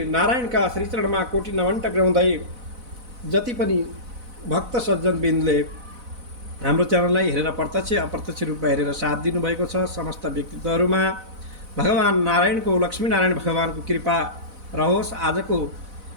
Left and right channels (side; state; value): left; late; 4.0 ms